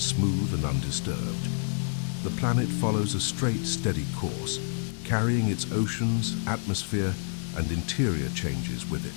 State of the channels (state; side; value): silent; right; digital silence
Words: smooth and undisturbed. The planet follows a straight, steady course, carrying its oceans, atmosphere, and interior changes with